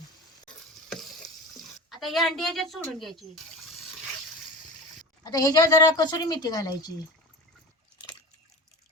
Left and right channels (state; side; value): normal; both; correlation 0.31